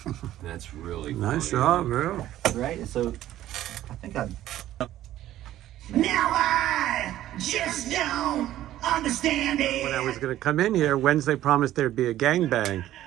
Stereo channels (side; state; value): left; quieter; 13.5 dB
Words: That's really Nice funny. job, bro. Right? So, I think I... Now I just don't understand it. When I was going to come in here, Wednesday promised there'd be a gangbang,